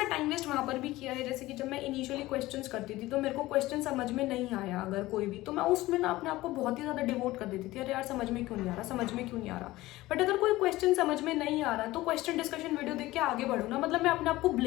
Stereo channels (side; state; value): right; quieter; 17.9 dB